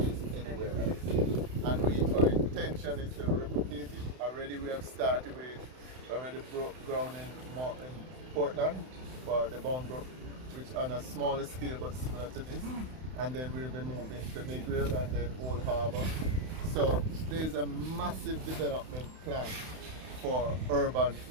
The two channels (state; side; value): late; left; 31 ms